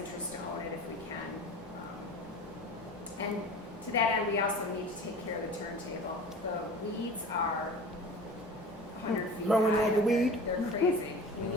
to own it if we can. And to that end, we also need to take care of the turntable. The weeds are 100 feet Growing high. like a weed? They're crazy. We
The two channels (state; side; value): normal; both; correlation 0.38